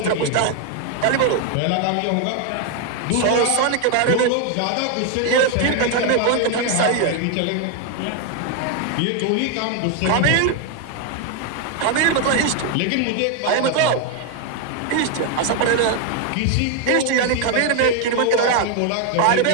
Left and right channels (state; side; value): different; both; correlation 0.01